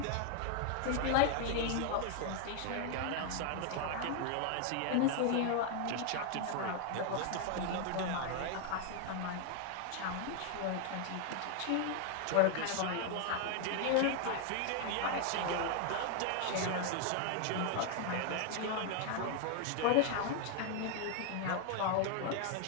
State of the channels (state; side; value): different; both; correlation 0.00